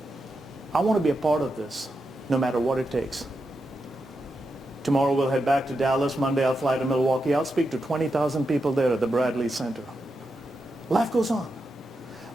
I want to be a part of this, no matter what it takes. Tomorrow we'll head back to Dallas. Monday I'll fly to Milwaukee. I'll speak to 20,000 people there at the Bradley Center. Life goes on.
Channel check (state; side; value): normal; both; correlation 0.87